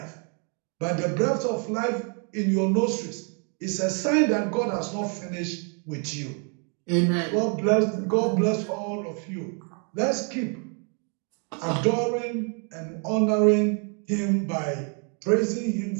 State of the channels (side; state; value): left; quieter; 39.1 dB